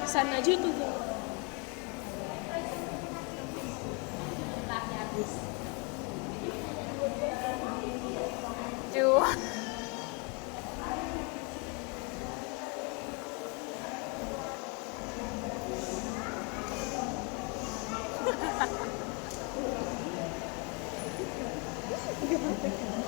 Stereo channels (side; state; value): right; quieter; 33.1 dB